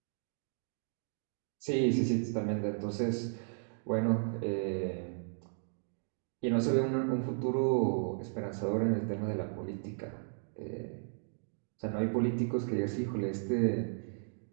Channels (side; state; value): left; silent; digital silence